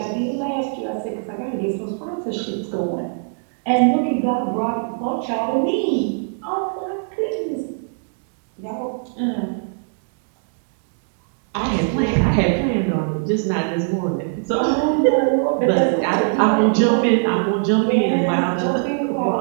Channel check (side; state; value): left; silent; 65 dB below the other